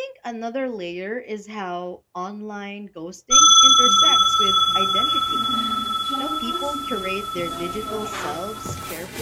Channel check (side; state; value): both; identical; correlation 1.00